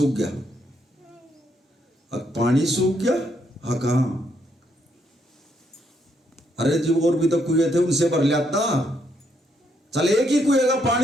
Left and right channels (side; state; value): both; normal; correlation 0.74